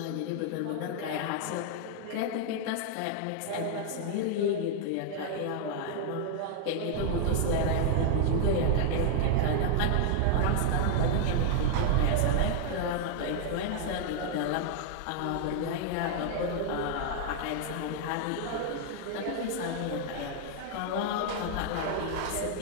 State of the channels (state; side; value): different; both; correlation 0.00